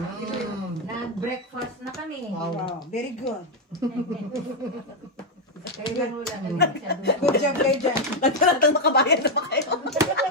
Nag-breakfast na kami. Wow. Wow, very good. Kaya lang wala na masyado. Good job kayo dyan. Nagkaratang makabayan na ba kayo? Tapos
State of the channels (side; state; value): both; normal; correlation 0.03